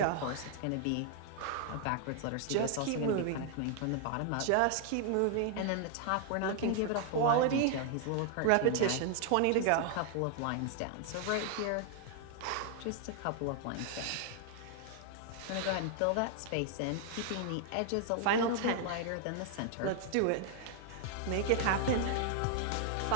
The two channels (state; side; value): different; both; correlation 0.00